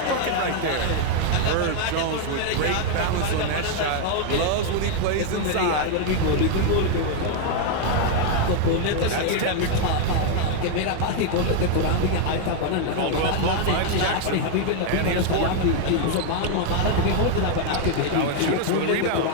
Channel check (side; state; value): both; different; correlation 0.00